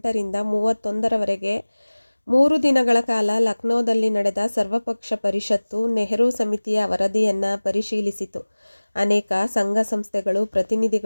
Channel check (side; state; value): both; inverted; correlation -1.00